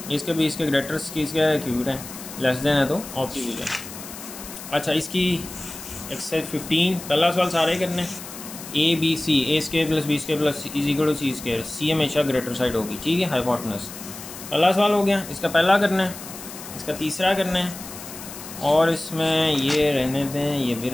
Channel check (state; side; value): noise; left; hiss, 13 dB below the sound